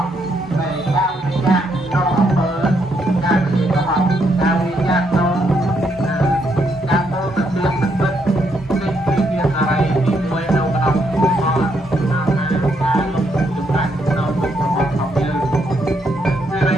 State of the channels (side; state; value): both; normal; correlation 0.75